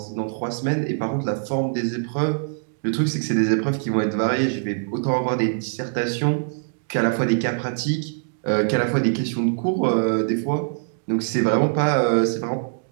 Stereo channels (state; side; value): silent; left; digital silence